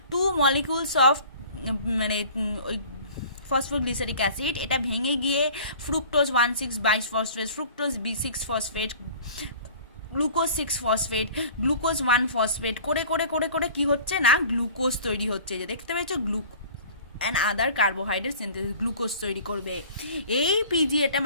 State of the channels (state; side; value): inverted; both; correlation -0.45